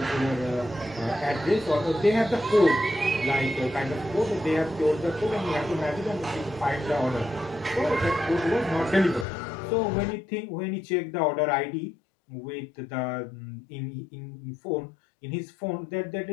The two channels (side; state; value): right; drops out; at 9.2 s